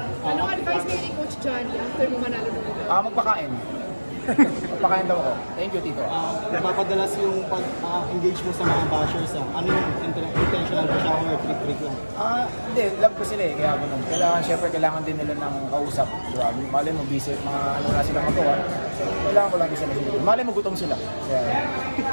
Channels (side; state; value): both; inverted; correlation -1.00